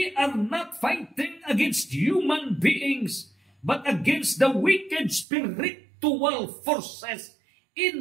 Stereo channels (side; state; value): left; drops out; at 5.2 s